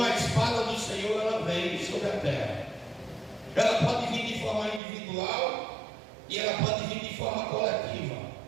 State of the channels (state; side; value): drops out; left; at 4.8 s